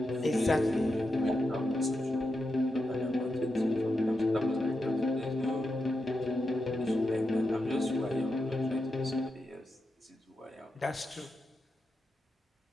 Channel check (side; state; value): both; normal; correlation 0.88